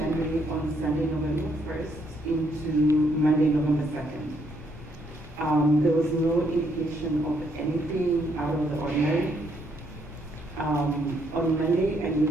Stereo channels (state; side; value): noise; left; rumble, 16 dB below the sound